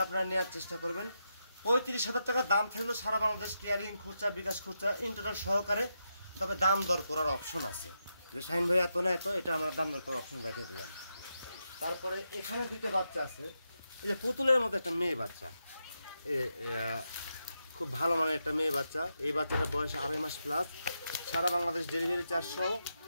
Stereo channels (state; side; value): inverted; both; correlation -0.85